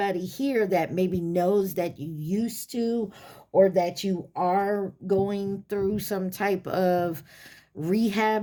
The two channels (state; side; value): identical; both; correlation 1.00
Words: here that maybe knows that you used to, or that you are going through some type of